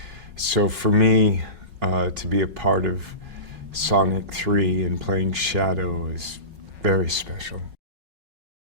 so for me, to be a part of Sonic 3 and playing Shadow is very special.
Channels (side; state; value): left; late; 5.4 ms